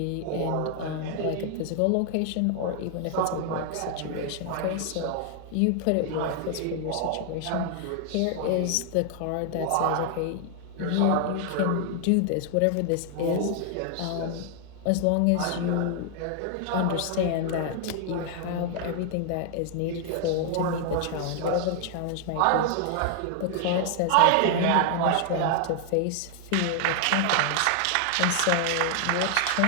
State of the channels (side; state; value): both; different; correlation 0.00